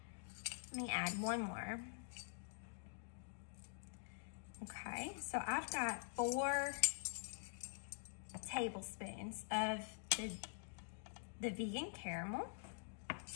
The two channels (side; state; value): right; silent; digital silence